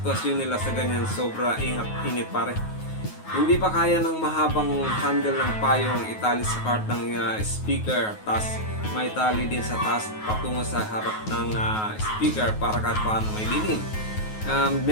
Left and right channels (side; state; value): right; late; 9.4 ms